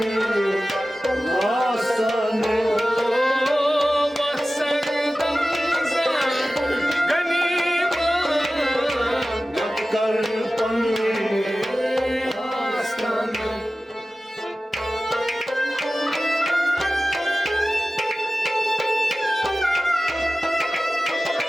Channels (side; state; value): both; normal; correlation 0.96